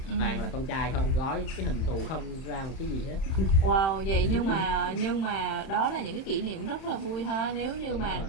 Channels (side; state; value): right; late; 31 ms